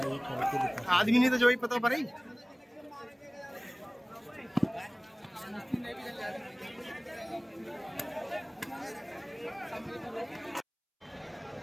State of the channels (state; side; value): identical; both; correlation 1.00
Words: करके दिखा। आदमी नहीं तो जो ही पता पड़े।